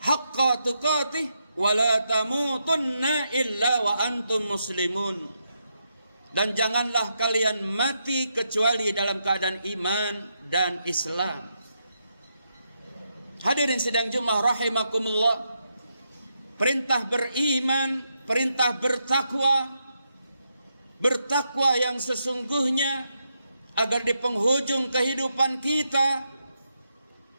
tuqatih wa la tamutunna illa wa antum muslimun. Dan janganlah kalian mati kecuali dalam keadaan iman dan Islam. Hadirin sidang Jumat rahimakumullah, perintah beriman, perintah bertakwa yang sesungguhnya, agar di penghujung kehidupan kita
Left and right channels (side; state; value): both; inverted; correlation -0.82